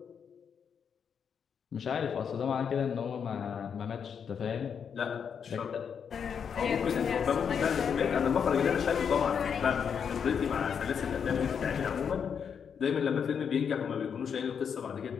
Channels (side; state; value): right; quieter; 7.1 dB